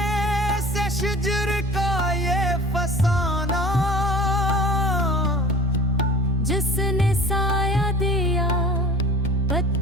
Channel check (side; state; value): both; normal; correlation 0.43